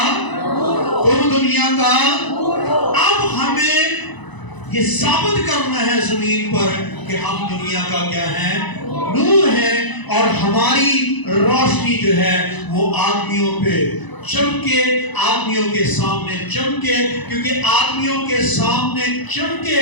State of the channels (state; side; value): late; right; 1.0 ms